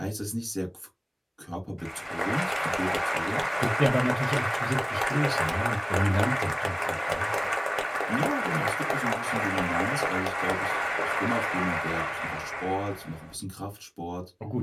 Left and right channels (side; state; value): both; identical; correlation 1.00